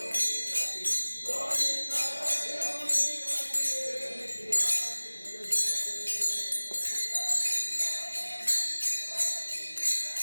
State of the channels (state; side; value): inverted; both; correlation -1.00